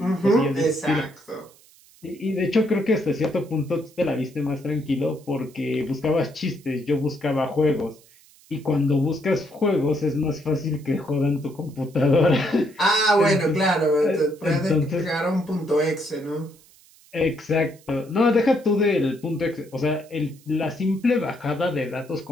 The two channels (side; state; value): right; noise; hiss, 27 dB below the sound